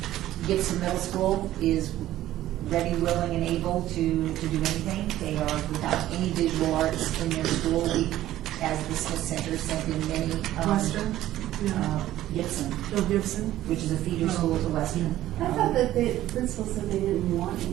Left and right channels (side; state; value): left; quieter; 14.0 dB